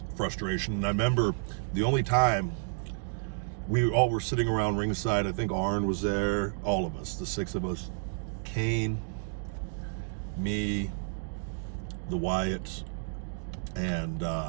frustration. And I remember the only time we all were sitting around ringside, I think Arn was there, all of us, the 6 of us, Kane, me, the Wyatts, and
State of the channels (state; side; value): silent; left; digital silence